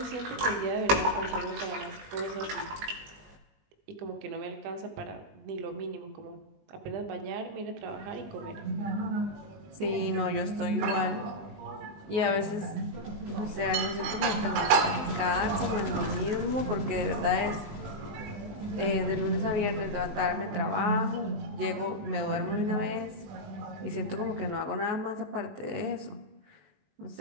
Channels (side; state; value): left; late; 20 ms